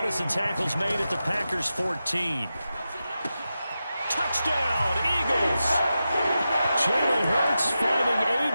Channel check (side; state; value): both; inverted; correlation -0.91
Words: as the tackle's made at the Packers' 14. Touchdown, Eagles! Jalen Hurts finding